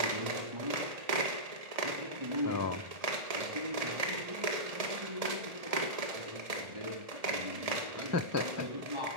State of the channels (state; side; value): late; left; 1.7 ms